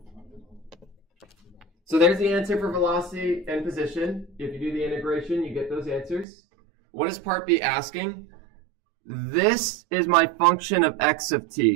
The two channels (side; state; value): left; drops out; at 6.2 s